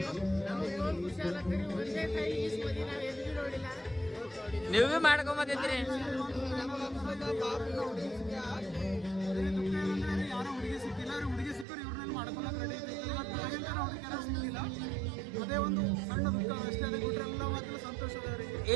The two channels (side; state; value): left; drops out; at 11.7 s